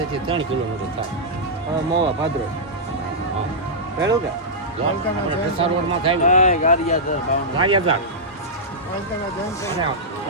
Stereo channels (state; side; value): normal; both; correlation -0.11